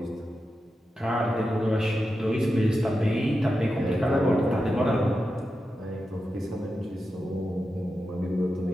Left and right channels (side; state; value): both; normal; correlation 0.90